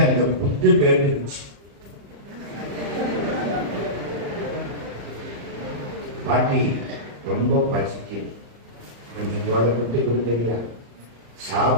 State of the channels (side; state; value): left; late; 35 ms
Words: அந்த புட்டு கேட்டுச்சு. பாட்டி ரொம்ப பசிக்குது, கொஞ்சம் போல புட்டு கொடுக்குறியா?